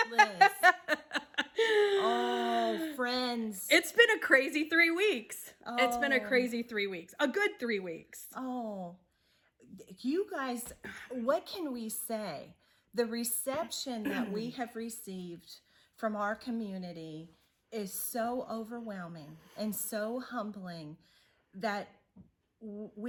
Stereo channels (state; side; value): identical; both; correlation 1.00